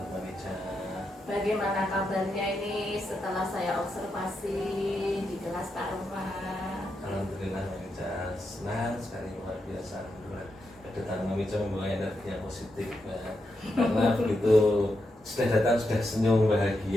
Mbak Meja. Bagaimana kabarnya ini setelah saya observasi di kelas Pak Rohman? Alhamdulillah, Mbak Meja. Senang sekali, luar biasa. Alhamdulillah. Kedatangan Mbak Meja membawa energi yang positif, Mbak. Karena begitu sudah datang sudah senyum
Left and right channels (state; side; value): normal; both; correlation 0.84